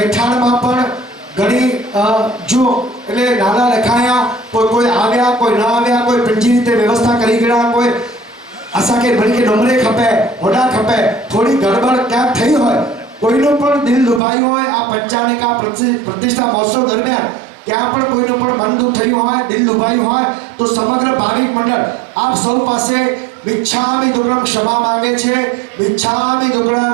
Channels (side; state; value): left; drops out; at 14.2 s